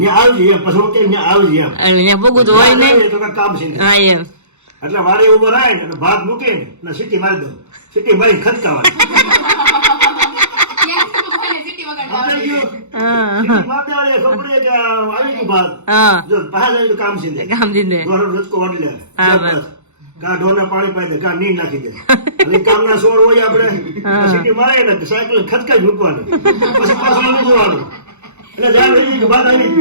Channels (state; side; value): late; left; 0.83 ms